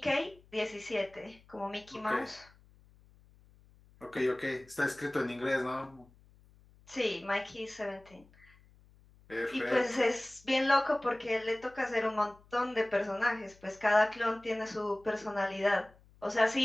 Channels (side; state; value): left; noise; hum, 27 dB below the sound